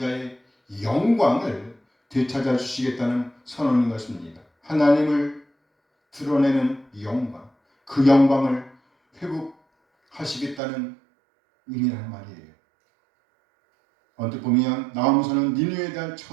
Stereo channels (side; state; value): left; drops out; at 10.6 s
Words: 영광을 되찾아 주시겠다는 선언인 것입니다. 하나님을 드러내는 영광, 그 영광을 회복하시겠다는 의미라는 말이에요. 언뜻 보면 나아무서는 니느웨에 대한